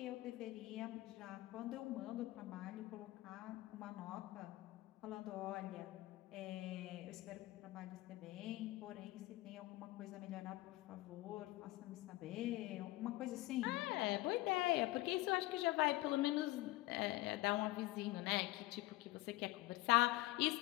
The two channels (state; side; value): quieter; right; 18.6 dB